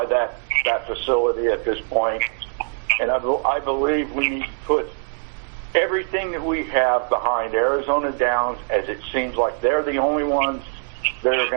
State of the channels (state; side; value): silent; left; 60 dB below the other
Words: that facility at this point, and I believe we need to put everything that we have behind Arizona Downs, as it seems like they're the only ones that are